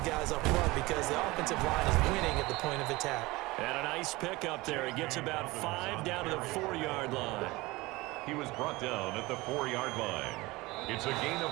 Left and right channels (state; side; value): quieter; left; 21.3 dB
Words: guys up front because the offensive line is winning at the point of attack. And a nice pickup there. He gets about 5 down to the 4-yard line. He was brought down at the 4-yard line. It's a gain